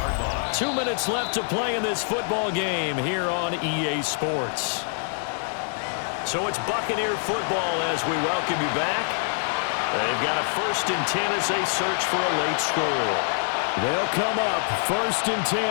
2 minutes left to play in this football game here on EA Sports. So it's Buccaneer football as we welcome you back. They've got a 1st and 10 as they search for a late score. They'll come up 1st and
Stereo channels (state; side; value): silent; right; digital silence